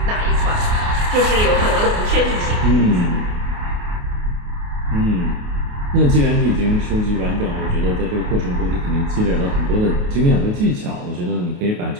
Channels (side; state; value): left; late; 28 ms